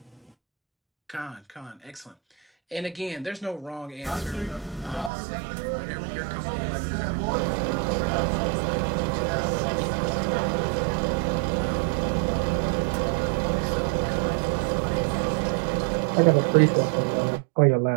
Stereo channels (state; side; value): drops out; left; at 5.1 s